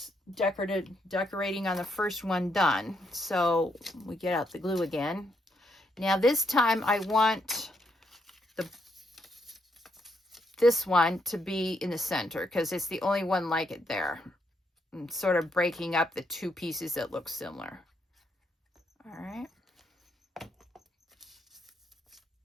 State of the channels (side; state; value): both; normal; correlation 0.77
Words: decorating on the first one done. So we get out the glue again. Now this time I want this one to be in the center because it's the only one like it there. I'm sort of breaking up the 2 pieces that look similar. All right.